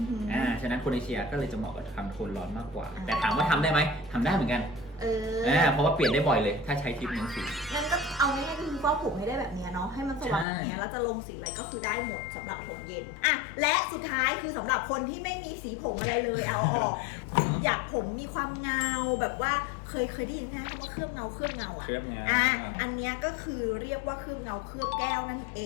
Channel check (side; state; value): right; drops out; at 10.5 s